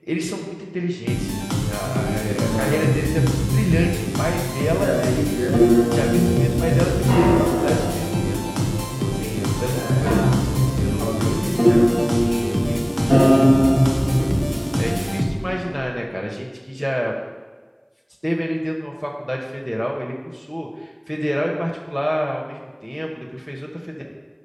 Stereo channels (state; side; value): identical; both; correlation 1.00